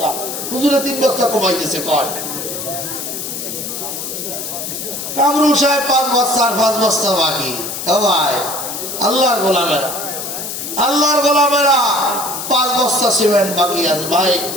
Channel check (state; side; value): noise; left; hiss, 6 dB below the sound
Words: হুজুরে 3 বস্তা কমাইতেছে কয়। কামরুল সাহেব 5 বস্তা আর 5 বস্তা বাকি। ও ভাই আল্লাহর গোলামেরা, আল্লাহর গোলামেরা, 5 বস্তা সিমেন্ট বাকি আছে। ভাই